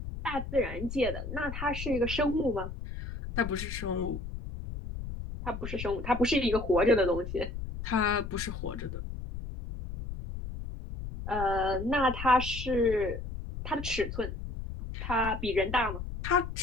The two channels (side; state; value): left; noise; rumble, 7 dB below the sound